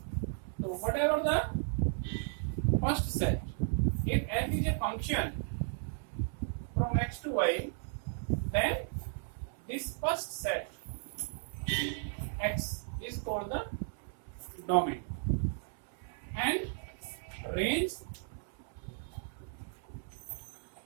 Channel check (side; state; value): left; silent; 54 dB below the other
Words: So whatever the first set, if f is a function from x to y, then this first set x is called the domain, and range